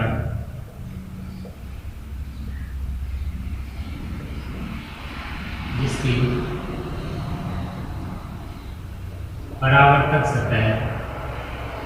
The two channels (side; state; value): both; identical; correlation 1.00